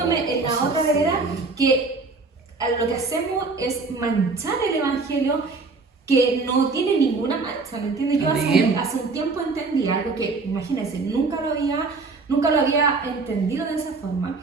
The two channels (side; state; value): left; quieter; 3.9 dB